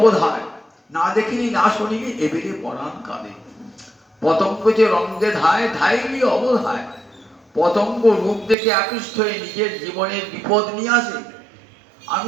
না দেখিনি না শুনিনি এবেরে পরাণ কাঁদে। পতঙ্গ যে রঙ্গে ধায় ধাইলি অবধায়, পতঙ্গ রূপ দেখে আকৃষ্ট হয়ে নিজের জীবনের বিপদ নিয়ে আসে। আমি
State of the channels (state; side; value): drops out; left; at 8.6 s